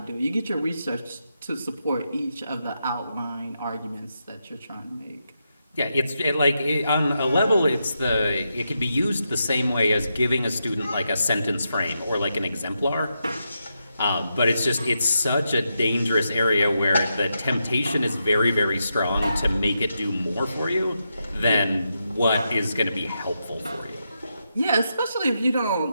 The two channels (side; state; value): both; inverted; correlation -0.85